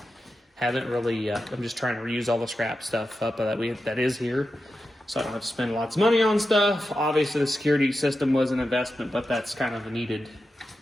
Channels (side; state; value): both; normal; correlation 0.90